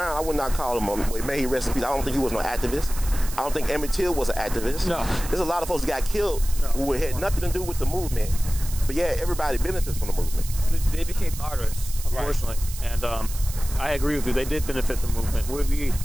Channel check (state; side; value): noise; right; hiss, 12 dB below the sound